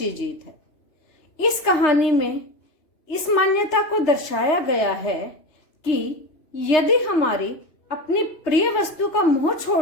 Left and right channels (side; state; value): right; late; 3.3 ms